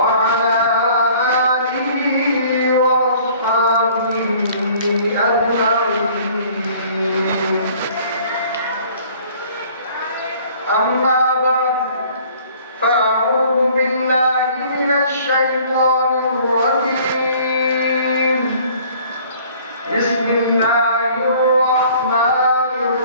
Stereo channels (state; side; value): inverted; both; correlation -0.54